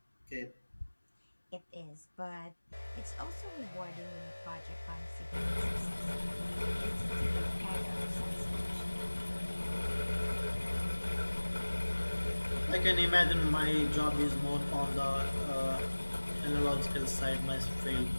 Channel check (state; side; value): inverted; both; correlation -1.00